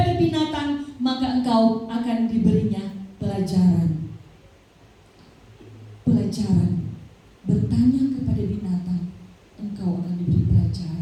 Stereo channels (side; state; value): both; identical; correlation 1.00